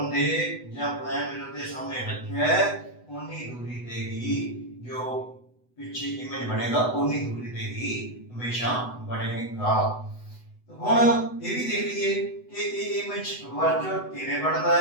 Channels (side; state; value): right; late; 8.0 ms